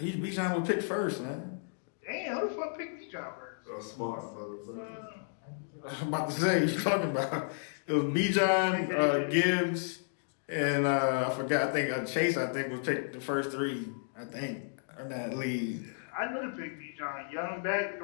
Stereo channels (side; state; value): right; silent; digital silence